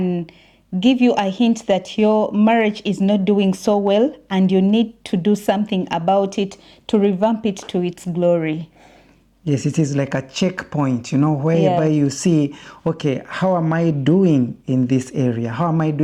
give you a hint that your marriage is not doing so well and you need to do something about it to revamp it to its glory. Yes, it is like a checkpoint, whereby you see, okay, how am I doing in this area? How am I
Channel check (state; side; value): identical; both; correlation 1.00